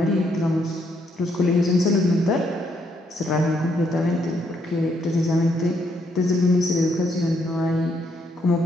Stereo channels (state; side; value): normal; both; correlation 0.74